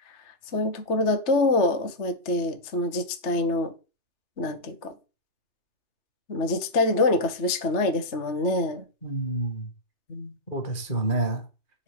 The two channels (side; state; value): right; late; 3.3 ms